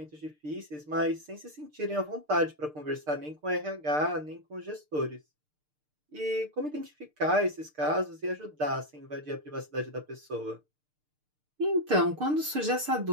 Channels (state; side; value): late; left; 6.6 ms